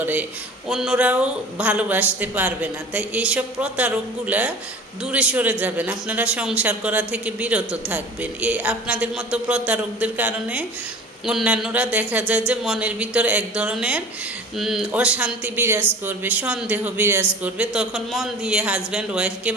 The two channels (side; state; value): both; normal; correlation 0.40